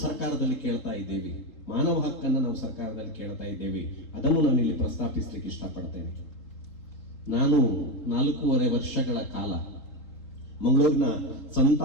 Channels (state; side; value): late; right; 3.8 ms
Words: ಸರ್ಕಾರದಲ್ಲಿ ಕೇಳ್ತಾ ಇದ್ದೇವೆ, ಮಾನವ ಹಕ್ಕನ್ನು ನಾವು ಸರ್ಕಾರದಲ್ಲಿ ಕೇಳ್ತಾ ಇದ್ದೇವೆ. ಅದನ್ನು ನಾನು ಇಲ್ಲಿ ಪ್ರಸ್ತಾಪಿಸಲಿಕ್ಕೆ ಇಷ್ಟಪಡ್ತೇನೆ. ನಾನು 4.5 ವರ್ಷಗಳ ಕಾಲ ಮಂಗಳೂರಿನ ಸಂತ